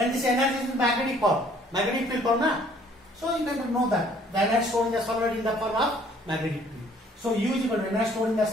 this energy is in magnetic form, magnetic field form, na? So you can know that the energy stored in the solenoid in the form of magnetic field. So U is equal to energy stored in the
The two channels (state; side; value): normal; both; correlation 0.59